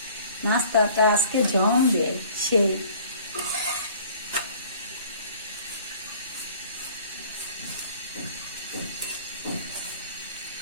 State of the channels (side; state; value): both; inverted; correlation -0.51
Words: নাস্তাটা আজকে জমবে সেই।